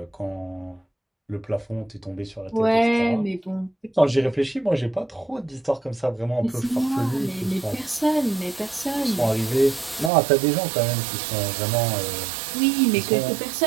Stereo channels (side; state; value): left; drops out; at 10.1 s